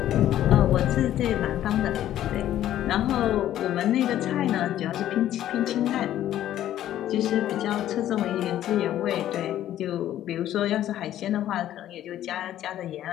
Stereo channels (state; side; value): quieter; right; 12.3 dB